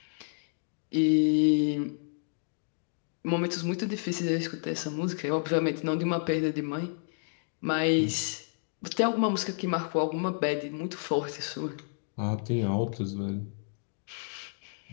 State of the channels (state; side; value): silent; right; digital silence